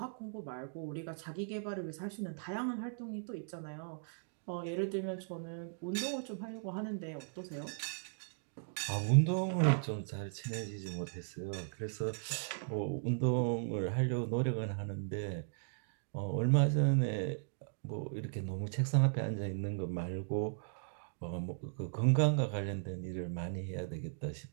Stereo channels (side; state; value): left; silent; digital silence